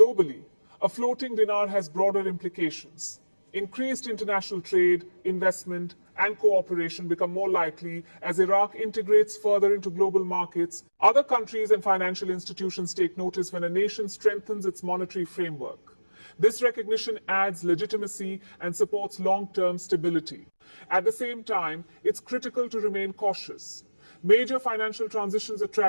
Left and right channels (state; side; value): inverted; both; correlation -1.00